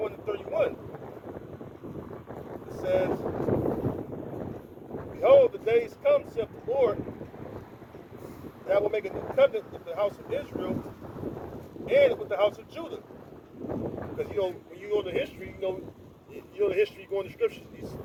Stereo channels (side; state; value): both; identical; correlation 1.00